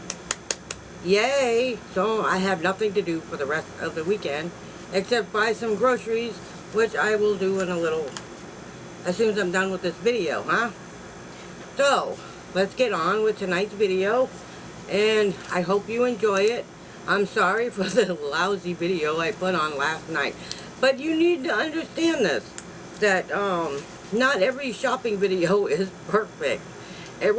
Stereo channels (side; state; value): both; identical; correlation 1.00